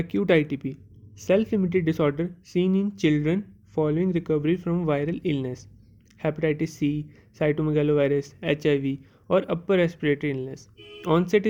ITP, self-limited disorder seen in children following recovery from viral illness, hepatitis C, cytomegalovirus, HIV, or upper respiratory illness. Onset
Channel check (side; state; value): both; identical; correlation 1.00